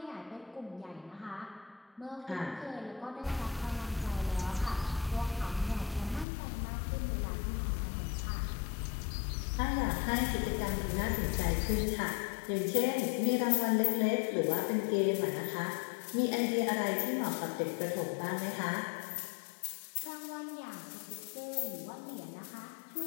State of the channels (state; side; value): drops out; right; at 6.2 s